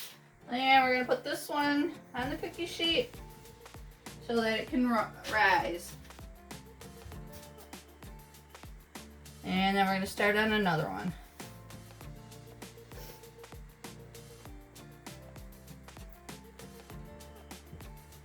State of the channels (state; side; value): identical; both; correlation 1.00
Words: And we're going to put this one on the cookie sheet so that it can rise. And then we're going to start on another one.